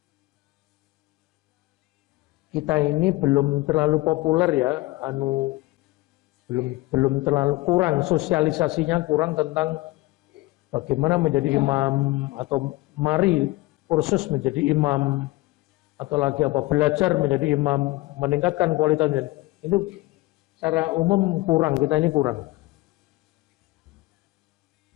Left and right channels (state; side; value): quieter; right; 20.4 dB